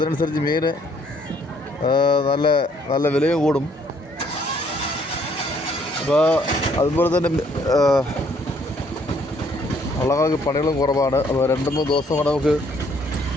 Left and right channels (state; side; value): normal; both; correlation 0.65